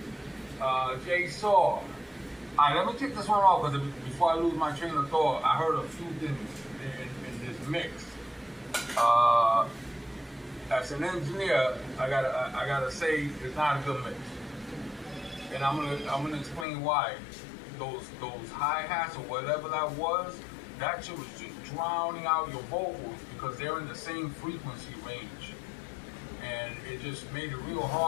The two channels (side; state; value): right; drops out; at 16.7 s